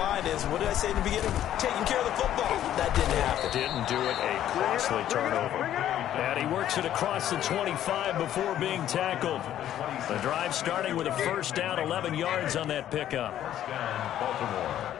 is, what did I say in the beginning? Taking care of the football. That didn't happen. Didn't do it. A costly turnover. And he works it across the 25 before being tackled. The drive starting with a first down, 11 yards on that pickup.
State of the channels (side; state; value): right; quieter; 11.6 dB